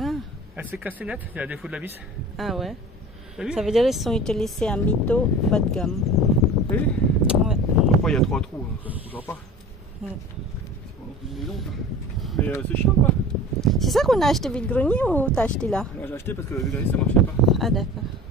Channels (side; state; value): both; normal; correlation 0.39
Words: Elle s'est cassée net, il y a des défaut de la vis. Ah ouais. T'as vu? Ça veut dire qu'ils sont utilisés en mytho bas de gamme. T'as vu? Ouais. Après, il y a 3 trous, hein, ça ne bougera pas. Ouais. C'est pas non plus une maison, ça. Mais c'est chiant, quoi. C'est ça qu'on a acheté vide grenier ou t'as acheté là? Moi, j'ai acheté parce que le grenier, ça marchait pas. Ah d'accord.